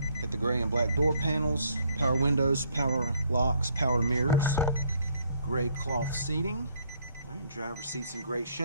Got the gray and black door panels, power windows, power locks, power mirrors, gray cloth seating. Alright, driver's seat's in great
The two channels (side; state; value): both; inverted; correlation -0.66